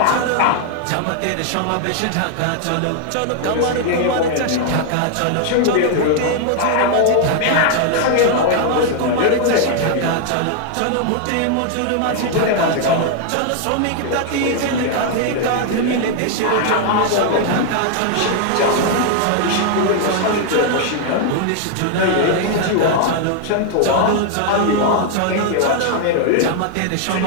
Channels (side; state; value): both; different; correlation 0.00